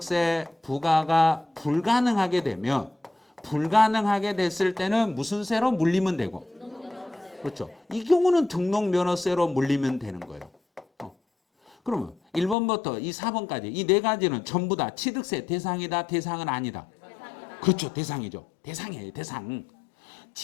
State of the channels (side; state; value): right; drops out; at 12.6 s